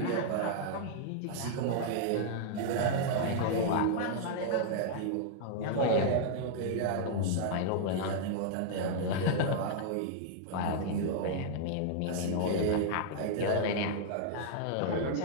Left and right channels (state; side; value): different; both; correlation -0.01